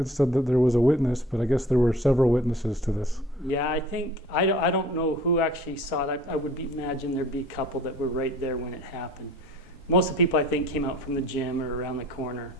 said that there was a witness, but I guess there were several witnesses to this. Yeah, I think I don't know who actually saw it. I would imagine there'd be a couple that were right there when it happened. Most of the people I think came out from the gym or around the corner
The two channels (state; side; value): normal; both; correlation 0.49